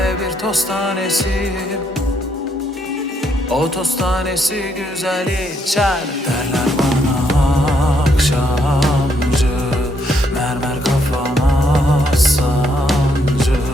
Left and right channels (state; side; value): normal; both; correlation 0.74